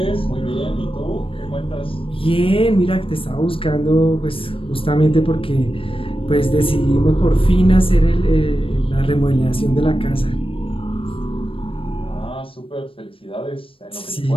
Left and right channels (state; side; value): late; right; 0.26 ms